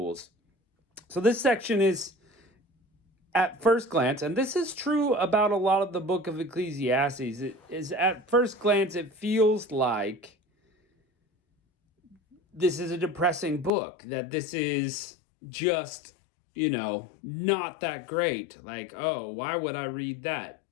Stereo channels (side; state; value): right; drops out; at 13.7 s